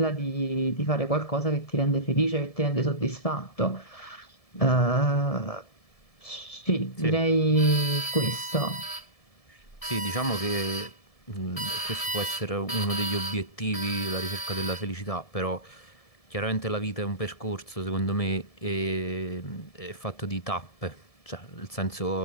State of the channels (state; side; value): late; right; 1.7 ms